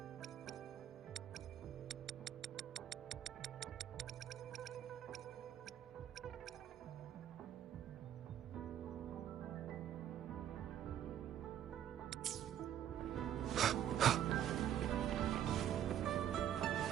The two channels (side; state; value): left; quieter; 10.6 dB